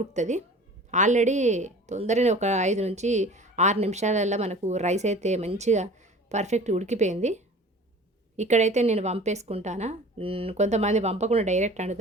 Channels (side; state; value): both; normal; correlation 0.43